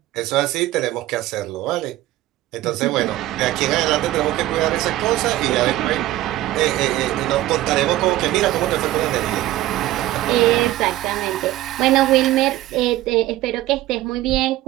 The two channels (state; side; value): quieter; left; 15.6 dB